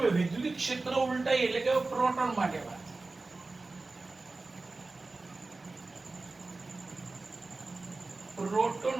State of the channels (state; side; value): quieter; left; 3.5 dB